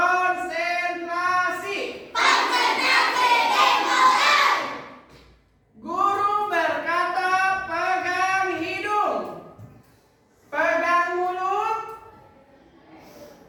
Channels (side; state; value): both; identical; correlation 1.00